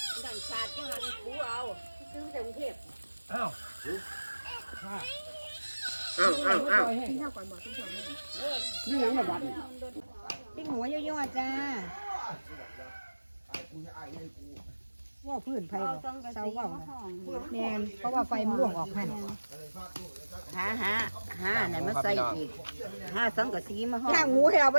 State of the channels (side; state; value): both; inverted; correlation -1.00